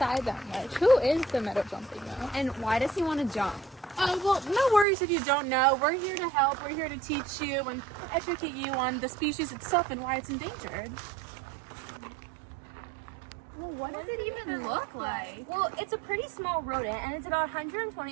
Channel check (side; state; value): left; drops out; at 4.9 s